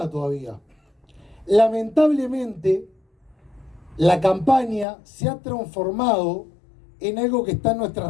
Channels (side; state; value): right; drops out; at 4.9 s